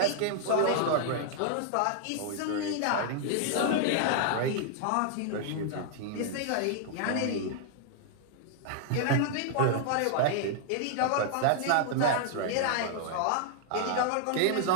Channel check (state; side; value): different; both; correlation 0.00